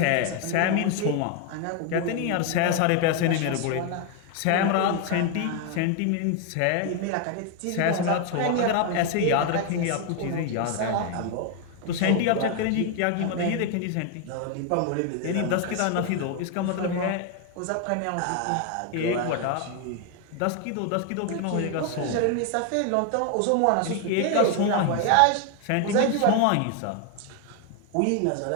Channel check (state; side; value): different; both; correlation 0.01